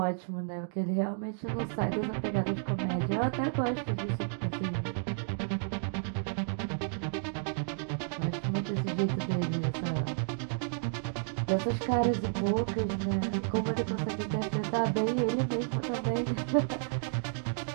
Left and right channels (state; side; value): silent; left; digital silence